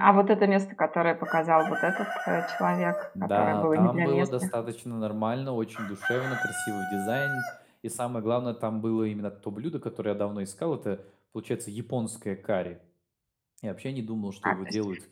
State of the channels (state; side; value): identical; both; correlation 1.00